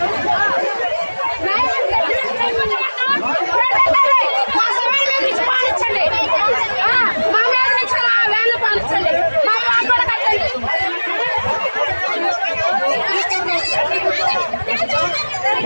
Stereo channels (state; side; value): inverted; both; correlation -1.00